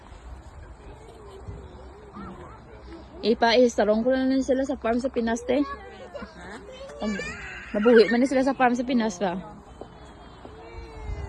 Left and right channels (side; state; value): both; identical; correlation 1.00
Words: Ipa-istarong ko na lang sila sa farm sa Pinas te. Mabuhi man sila sa farm sa Pinas ba?